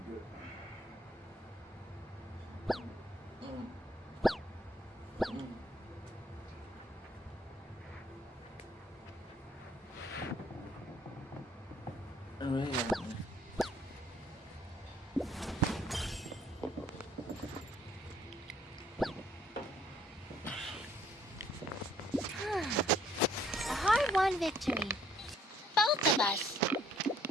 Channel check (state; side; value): normal; both; correlation 0.63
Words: A hard-won victory. Both of us.